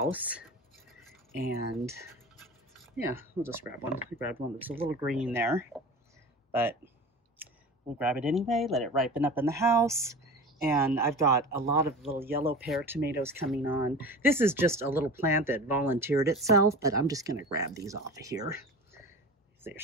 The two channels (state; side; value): normal; both; correlation 0.34